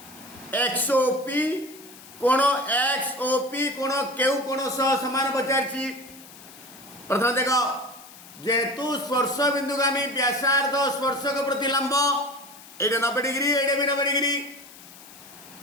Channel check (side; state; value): left; noise; hiss, 19 dB below the sound